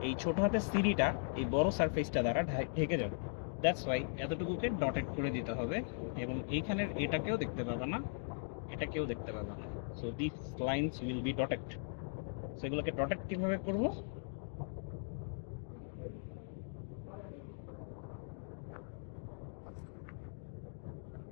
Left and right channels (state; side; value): silent; right; digital silence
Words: এই ছোট হাতের সিঁড়িটা এই বড় সারফেসটা দ্বারা ঢেকে যাবে। দ্যাটস ওয়াই এতটুকুকে ডটেড করে দিতে হবে, এবং এইখানের এটাকেও দেখতে পাবা না, এটাকেও দেখতে পাবা না। So this lines will be dotted. সেগুলোকে ডটেড কিভাবে করবো?